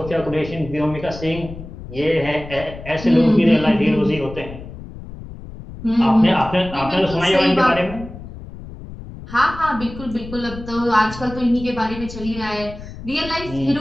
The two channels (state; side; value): noise; left; rumble, 13 dB below the sound